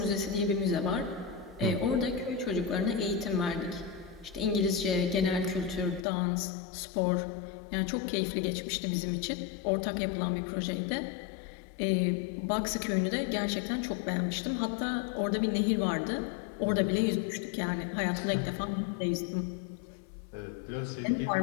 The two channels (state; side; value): drops out; right; at 6.1 s